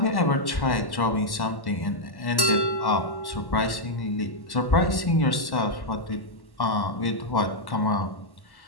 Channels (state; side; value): late; right; 1.1 ms